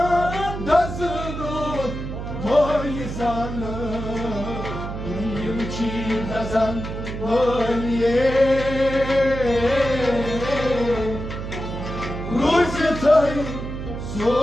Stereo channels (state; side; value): noise; right; hum, 7 dB below the sound